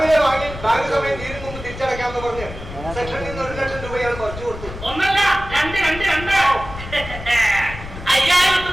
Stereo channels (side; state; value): left; noise; rumble, 12 dB below the sound